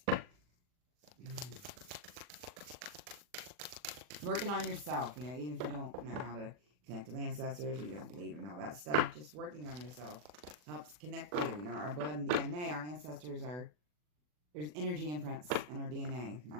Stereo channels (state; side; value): late; left; 40 ms